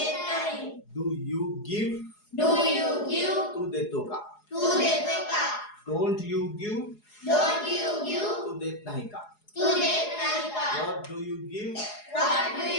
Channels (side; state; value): right; late; 4.8 ms